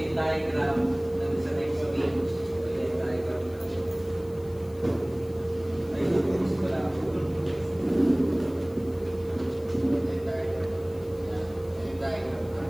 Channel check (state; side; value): noise; left; hiss, 26 dB below the sound